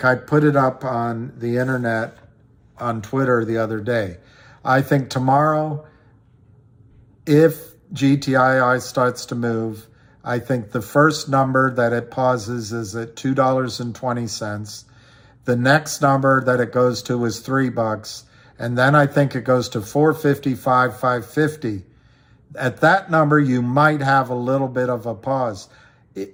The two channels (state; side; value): identical; both; correlation 1.00